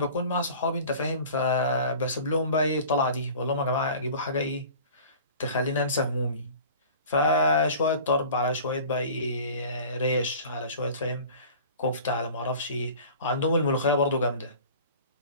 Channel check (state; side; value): inverted; both; correlation -0.43